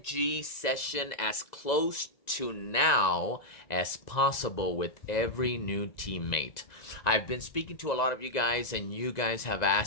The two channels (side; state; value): right; late; 1.9 ms